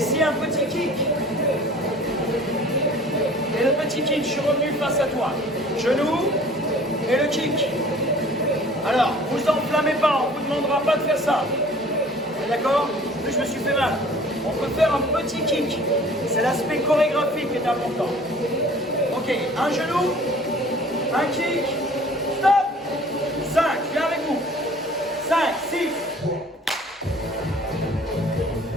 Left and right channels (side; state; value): both; normal; correlation 0.49